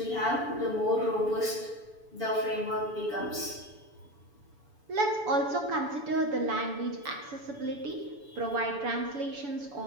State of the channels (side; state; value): left; late; 7.0 ms